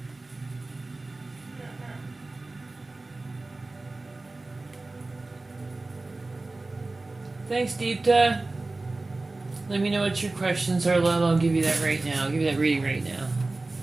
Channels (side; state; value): left; quieter; 3.2 dB